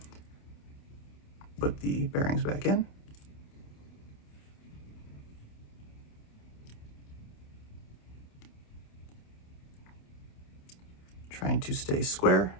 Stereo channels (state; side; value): late; right; 28 ms